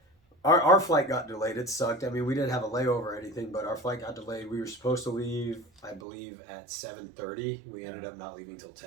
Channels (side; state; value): left; drops out; at 6.0 s